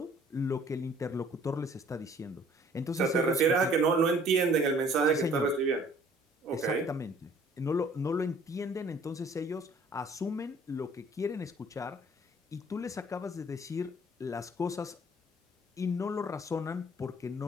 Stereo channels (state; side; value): normal; both; correlation 0.55